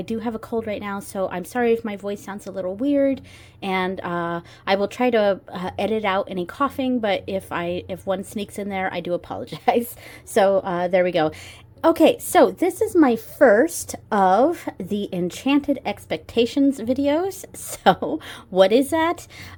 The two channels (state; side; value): identical; both; correlation 1.00